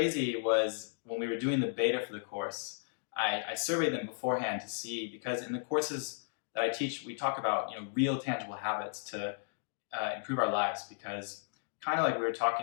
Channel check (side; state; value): right; silent; digital silence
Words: was when we were doing the beta for the course, I surveyed them beforehand to see, because in the courses that I teach, we talk about real tangible habits to improve our lives, because kind of like we were